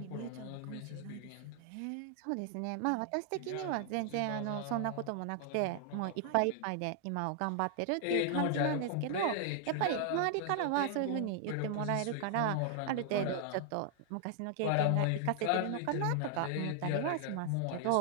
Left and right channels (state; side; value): different; both; correlation 0.00